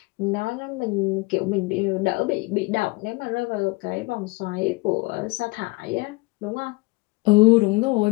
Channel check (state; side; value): quieter; right; 24.6 dB